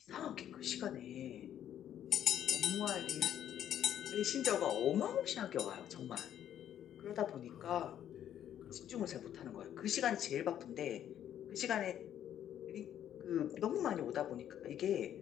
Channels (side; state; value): right; quieter; 10.5 dB